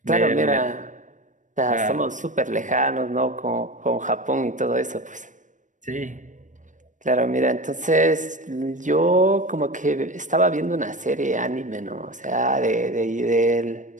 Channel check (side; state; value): left; late; 0.37 ms